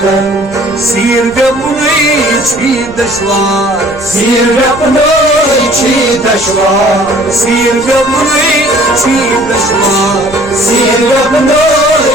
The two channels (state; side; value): noise; right; rumble, 19 dB below the sound